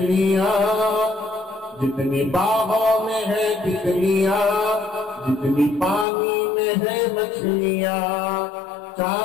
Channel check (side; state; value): right; drops out; at 6.1 s